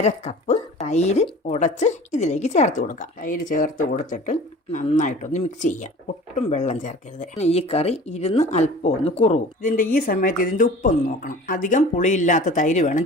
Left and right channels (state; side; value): normal; both; correlation 0.42